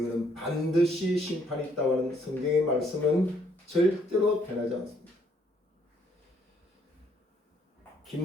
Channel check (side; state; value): both; normal; correlation 0.68